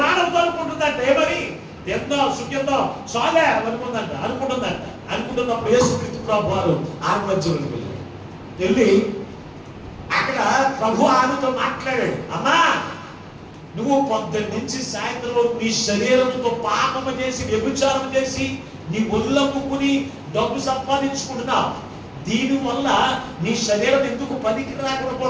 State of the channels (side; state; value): both; identical; correlation 1.00